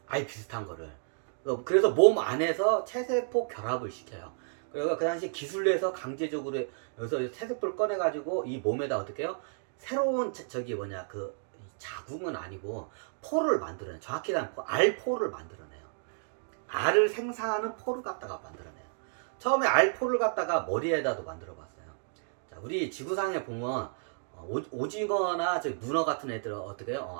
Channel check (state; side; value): silent; left; digital silence